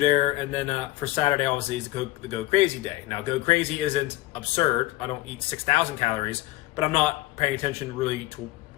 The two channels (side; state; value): right; quieter; 18.1 dB